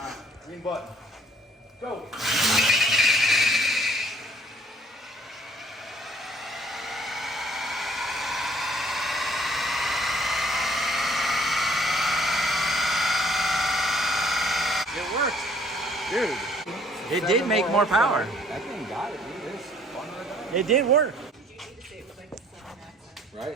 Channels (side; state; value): both; normal; correlation 0.59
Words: green button. Go. It worked. Dude. It did make more power. That thing got it, dude. It's fun right It did work. now.